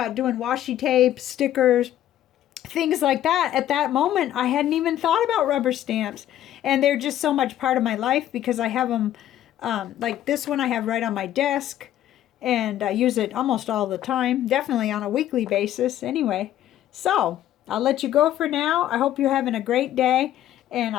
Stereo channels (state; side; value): quieter; right; 12.3 dB